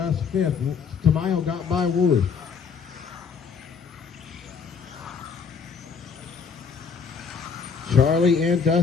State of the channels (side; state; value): right; quieter; 5.9 dB